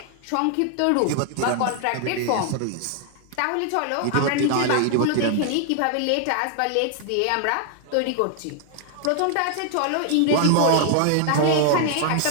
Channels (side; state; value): both; different; correlation 0.00